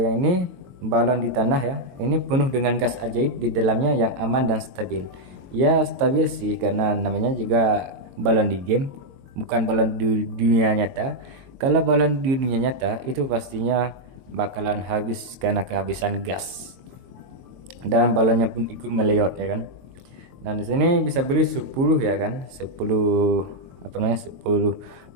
ini balon di tanah ya, ini penuh dengan gas ajaib di dalamnya yang aman dan stabil. Ya stabil sih karena namanya juga balon di game, bukan balon di dunia nyata. Kalau balon di dunia nyata itu pastinya bakalan habis karena kehabisan gas, dan balonnya pun ikut meleot ya kan. Dan di sini bisa beli 10 ya kan, 10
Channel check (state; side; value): late; left; 22 ms